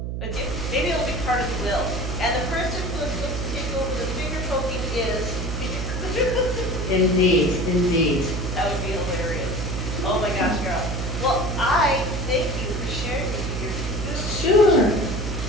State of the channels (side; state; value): right; noise; hum, 4 dB below the sound